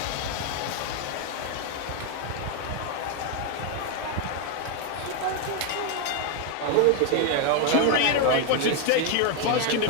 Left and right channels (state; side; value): different; both; correlation 0.01